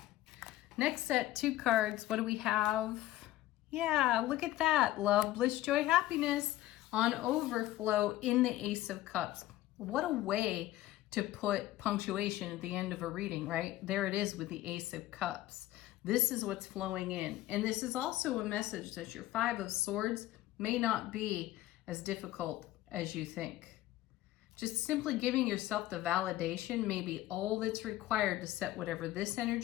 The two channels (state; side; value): quieter; right; 15.5 dB